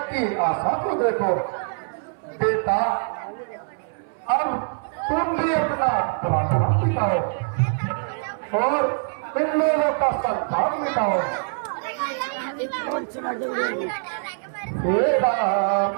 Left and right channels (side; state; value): left; silent; 61 dB below the other